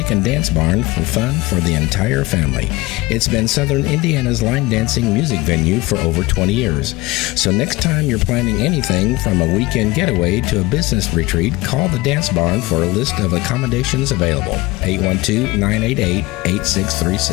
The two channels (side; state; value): right; quieter; 20.8 dB